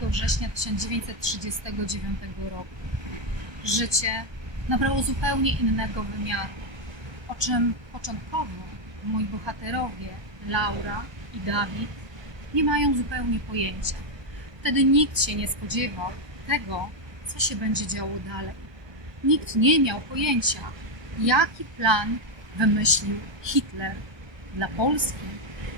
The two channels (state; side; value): late; left; 1.2 ms